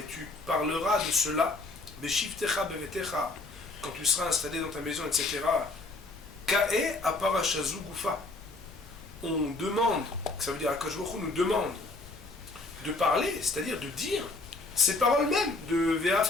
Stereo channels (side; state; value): right; quieter; 3.2 dB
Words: tu parleras de cela, beshivtecha bevetecha, quand tu seras installé dans ta maison, etc. Ka'e aparashazu gufa. On demande, ça veut dire Akadosh Baruch Hu nous demande de parler, c'est-à-dire de dire ces paroles mêmes de